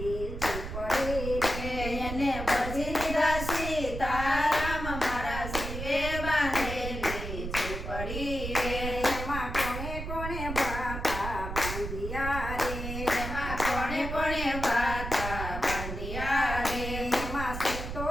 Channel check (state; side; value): noise; right; rumble, 6 dB below the sound